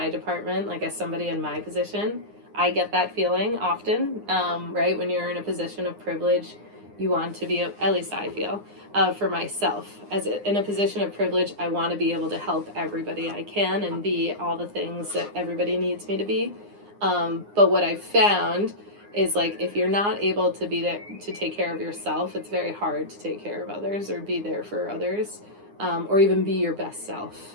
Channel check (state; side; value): late; left; 9.7 ms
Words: department, like as somebody in my position, I get that feeling often, right? When you're in a position of privilege, you want to be, at least I feel, for myself. In a position of privilege, I want to be able to help everybody I can and be all the things that everybody needs me to be. But what I've found is like if you're not able to be there to take care of yourself, it's very hard to take care of others or be there for others, or even be your best self